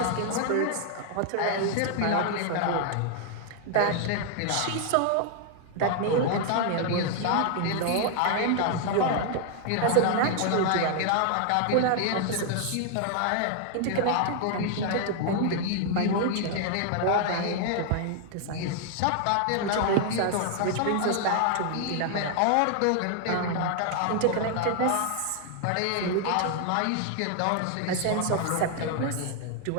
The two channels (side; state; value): both; different; correlation 0.00